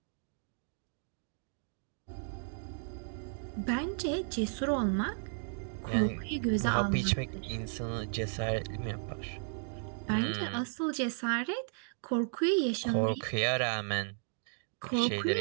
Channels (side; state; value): left; silent; digital silence